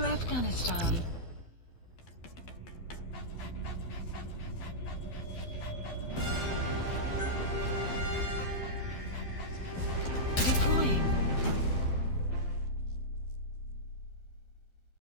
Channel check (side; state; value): right; late; 12 ms